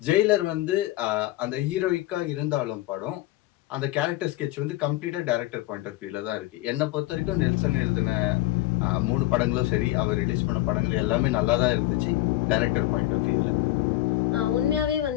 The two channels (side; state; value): right; quieter; 16.7 dB